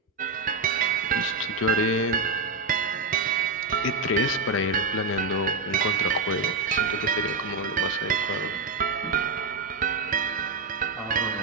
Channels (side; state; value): left; quieter; 3.8 dB